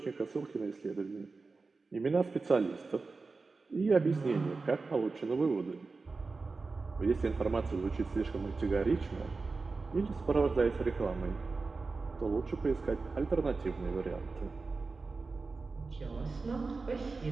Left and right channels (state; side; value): quieter; left; 4.0 dB